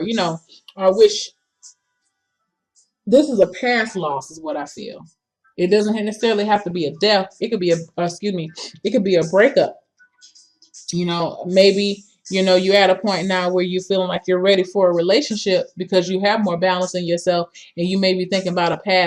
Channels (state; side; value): identical; both; correlation 1.00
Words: I wish. This is a past loss, is what I feel. It doesn't necessarily have to be a death. It could be excuse me, it could be a breakup. Maybe, you're at a point now where you're feeling like you're ready for a relationship because you have more balance in yourself, and you may be thinking about a